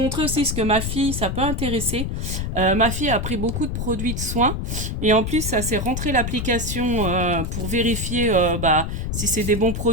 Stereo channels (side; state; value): left; noise; rumble, 3 dB below the sound